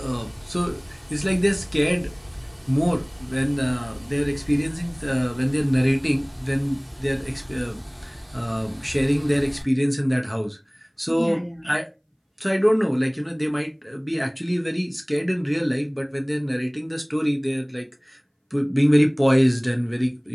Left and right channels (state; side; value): identical; both; correlation 1.00